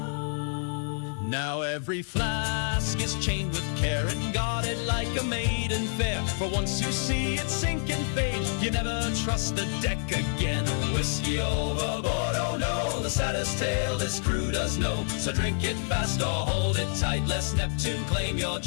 Now every flask is chained with care and guarded like a maiden fair. For once you see it sink and fade, you never trust the deck again. Whiskey overboard, oh no, the saddest tale this crew does know. So drink it fast or hold it tight, lest Neptune claim your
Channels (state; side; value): silent; right; digital silence